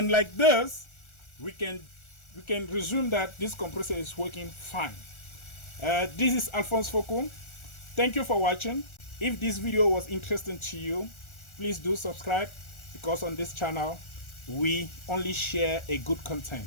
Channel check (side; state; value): right; late; 1.4 ms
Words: like this, we can resume that this compressor is working fine. This is Alphonse Foucault. Thank you for watching. If this video was interesting to you, please do subscribe, because on this channel we only share a good content.